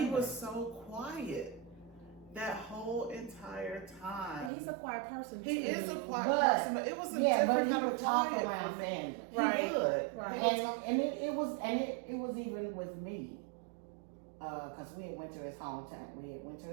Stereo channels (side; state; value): left; drops out; at 4.5 s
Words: was so quiet that whole entire time. He's a quiet person too. He is a quiet person, but it was a different but he kind would of talk quiet around for me. family. Right. He would. Right. And it was even with me, because we had went to his